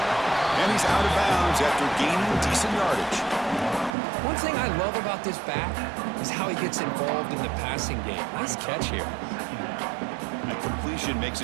And he's out of bounds after gaining decent yardage. One thing I love about this back is how he gets involved in the passing game. Nice catch here. That completion makes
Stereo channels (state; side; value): drops out; left; at 3.9 s